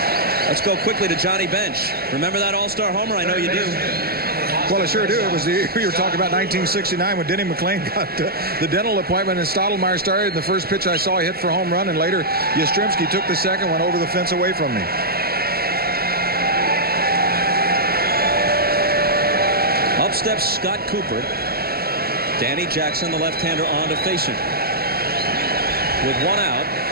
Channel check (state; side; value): late; left; 0.45 ms